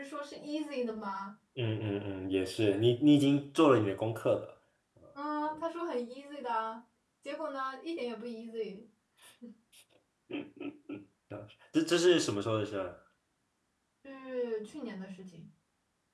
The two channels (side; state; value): both; identical; correlation 1.00